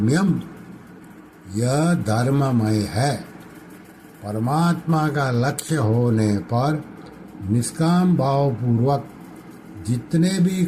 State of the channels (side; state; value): both; identical; correlation 1.00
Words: यह धर्ममय है। परमात्मा का लक्ष्य होने पर निष्काम भाव पूर्वक जितने भी